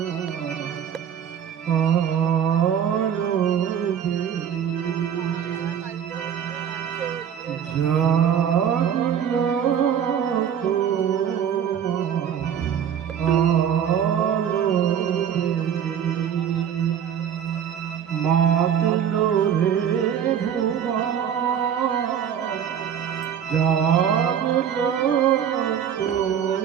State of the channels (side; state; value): left; quieter; 8.7 dB